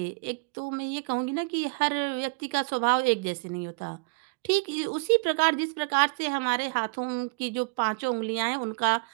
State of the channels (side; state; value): left; quieter; 31.7 dB